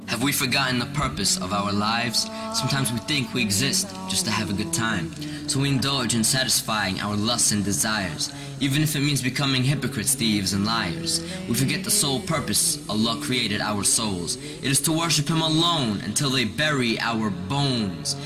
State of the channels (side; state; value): both; identical; correlation 1.00